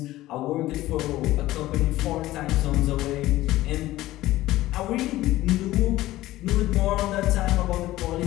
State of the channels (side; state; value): right; quieter; 16.3 dB